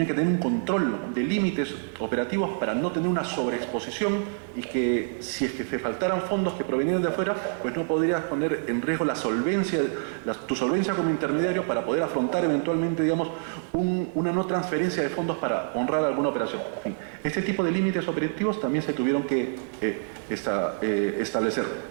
control de límites operativos para no tener una sobreexposición y que si es que te faltaran fondos que provenían de afuera, pues no podrías poner en riesgo tu solvencia como intermediario para poder afrontar eventualmente, digamos, una no transferencia de fondos para honrar alguna operación. En fin, este tipo de límites operativos también se tuvieron que establecer.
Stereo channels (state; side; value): silent; left; digital silence